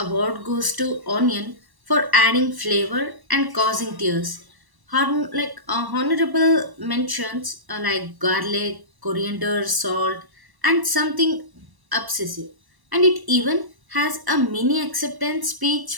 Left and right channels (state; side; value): late; left; 1.0 ms